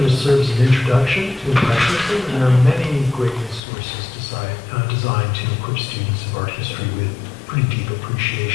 to serve as an introduction to Impressionism, and there are many great resources designed to equip students of art history with pretty deep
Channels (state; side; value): drops out; right; at 3.6 s